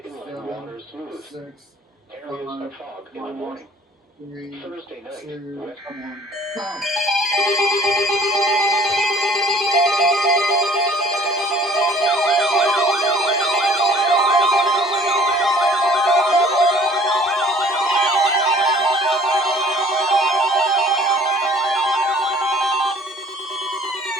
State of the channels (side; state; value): both; normal; correlation 0.53